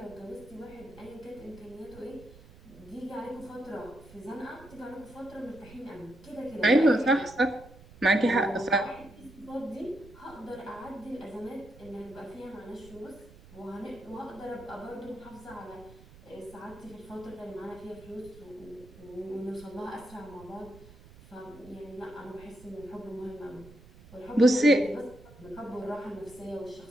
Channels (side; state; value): right; noise; rumble, 20 dB below the sound